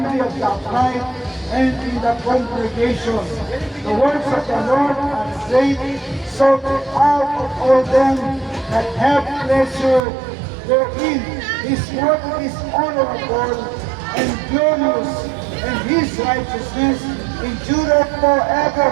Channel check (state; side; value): drops out; left; at 10.0 s